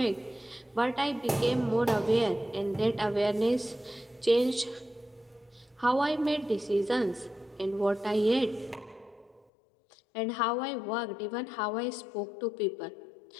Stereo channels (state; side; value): drops out; right; at 9.5 s